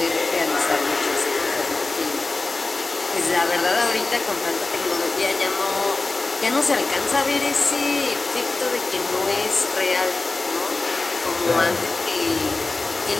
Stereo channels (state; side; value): quieter; right; 3.4 dB